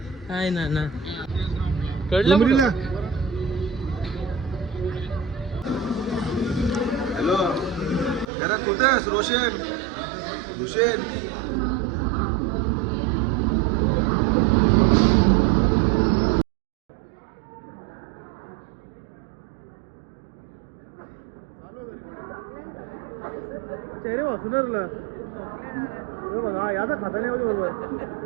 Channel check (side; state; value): left; drops out; at 8.3 s